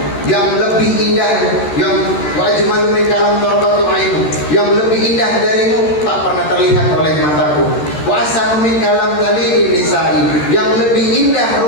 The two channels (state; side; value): late; right; 13 ms